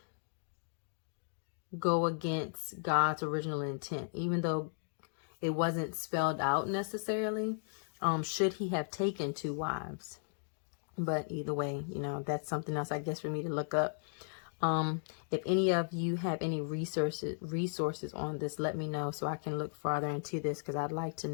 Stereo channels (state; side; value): silent; right; digital silence